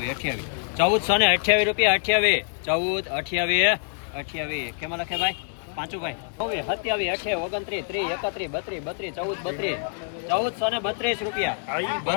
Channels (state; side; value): silent; right; digital silence